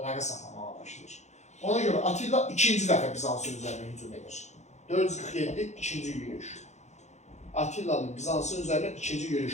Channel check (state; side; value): late; right; 0.33 ms